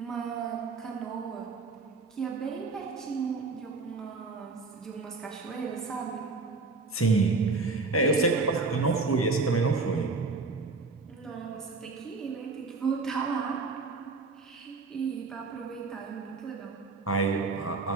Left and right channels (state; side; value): quieter; left; 4.0 dB